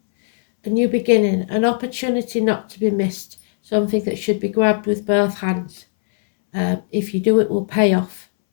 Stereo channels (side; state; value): right; silent; 67 dB below the other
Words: A new beginning, an opportunity not to be missed, something that should be grabbed with both hands. If you do, it will pay off.